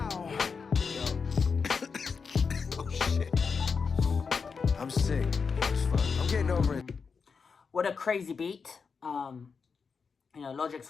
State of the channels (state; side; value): quieter; right; 5.4 dB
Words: Yo. Oh shit. I'm sick. It's fun. I'm getting over it. What a crazy beat. Logic's